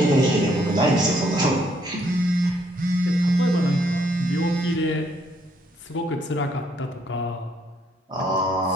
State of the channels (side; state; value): both; normal; correlation 0.70